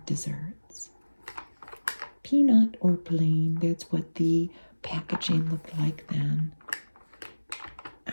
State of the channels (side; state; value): both; inverted; correlation -1.00